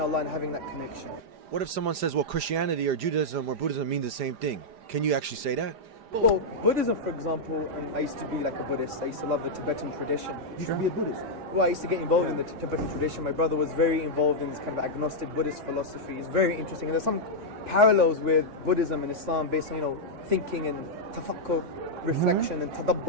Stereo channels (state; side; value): late; left; 5.0 ms